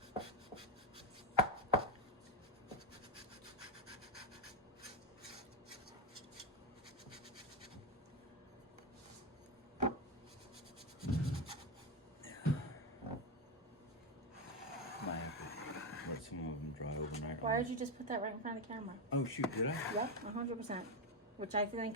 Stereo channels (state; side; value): normal; both; correlation 0.09